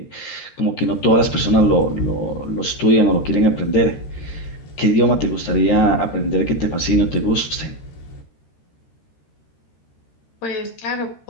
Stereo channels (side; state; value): right; late; 13 ms